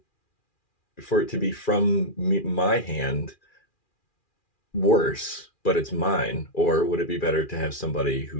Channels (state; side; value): late; right; 2.4 ms